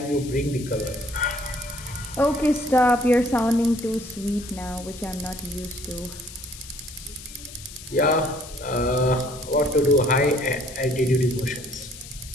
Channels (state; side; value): noise; left; hiss, 15 dB below the sound